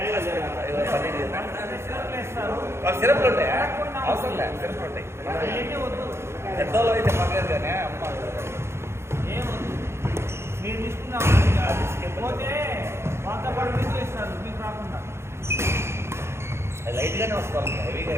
సిరప్లు ఉంటాయా అవసరం లేదు సిరప్లు ఉంటాయి పెద్దోళ్ళు అయితే పర్లేదు కానీ అమ్మ మీరు తీసుకున్నాం పోతే వంద పడి మీకు ఇస్తారు మీకు రాకుండా లైట్గానే వస్తుంది హెవీగా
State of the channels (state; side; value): late; left; 0.13 ms